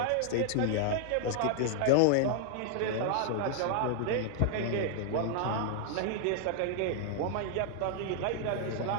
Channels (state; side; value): different; both; correlation 0.00